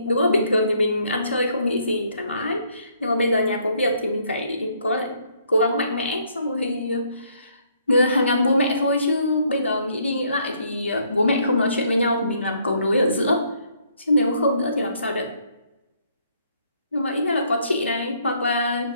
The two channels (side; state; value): both; inverted; correlation -0.68